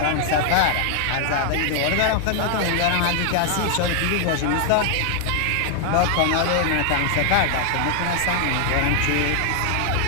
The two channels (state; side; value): different; both; correlation 0.00